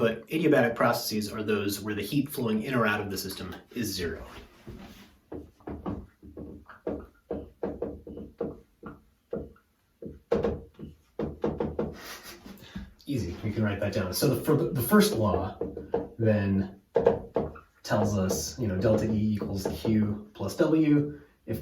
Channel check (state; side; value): identical; both; correlation 1.00